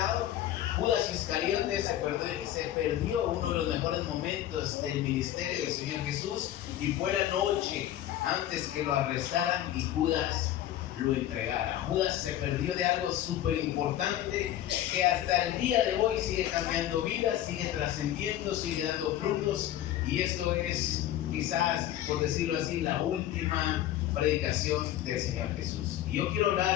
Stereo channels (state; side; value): quieter; right; 12.6 dB